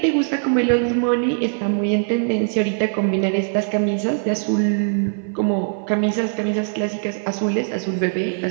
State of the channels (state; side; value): silent; left; 56 dB below the other